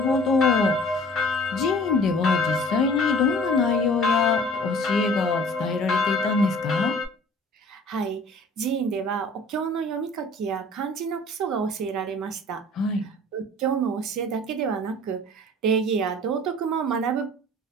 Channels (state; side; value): normal; both; correlation 0.49